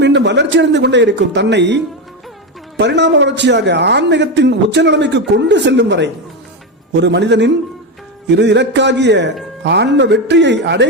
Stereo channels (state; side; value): normal; both; correlation 0.13